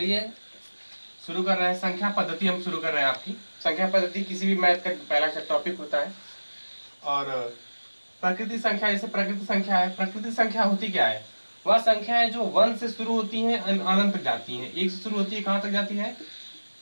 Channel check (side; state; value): both; inverted; correlation -1.00